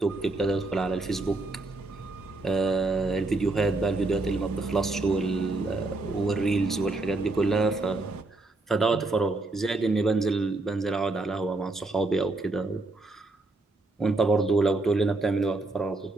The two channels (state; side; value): quieter; left; 3.1 dB